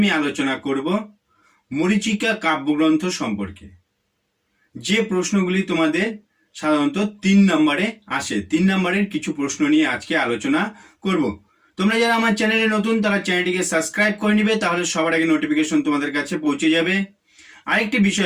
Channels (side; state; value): both; identical; correlation 1.00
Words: আলোচনা করব মরীচিকা কাব্যগ্রন্থ সম্পর্কে। যে প্রশ্নগুলি তোমাদের সাধারণত 3 নম্বরে আসে, 3 নম্বরের কিছু প্রশ্ন নিয়ে আজকে আলোচনা করব। তোমরা যারা আমার চ্যানেলে নতুন তারা চ্যানেলটিকে সাবস্ক্রাইব করে নিবে, তাহলে সবার আগে নোটিফিকেশন তোমাদের কাছে পৌঁছে যাবে। আরেকটি